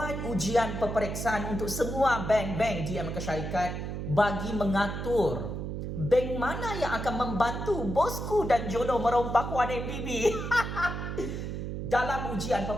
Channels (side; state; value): right; noise; hum, 5 dB below the sound